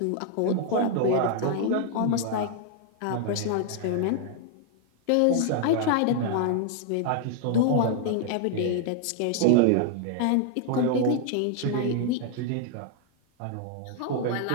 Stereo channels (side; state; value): both; different; correlation 0.00